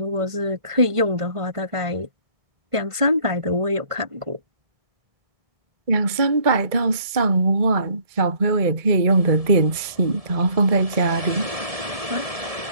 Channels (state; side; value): late; left; 1.7 ms